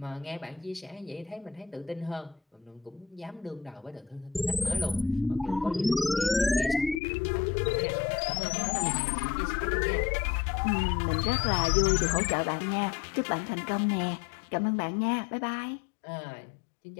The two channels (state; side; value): drops out; right; at 7.0 s